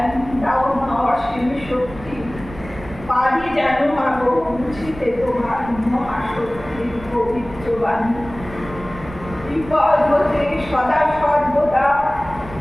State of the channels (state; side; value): noise; right; rumble, 15 dB below the sound